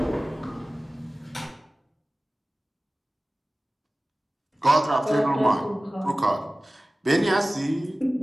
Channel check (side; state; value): both; normal; correlation 0.97